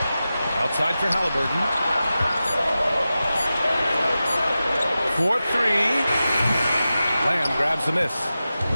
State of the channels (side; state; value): both; inverted; correlation -0.93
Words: Outside for Halliburton. 4-3. Lamb grabs the miss.